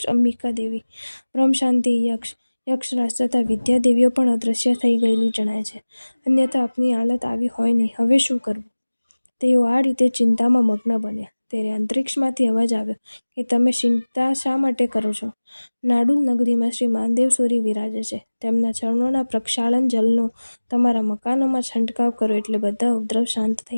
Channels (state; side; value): inverted; both; correlation -1.00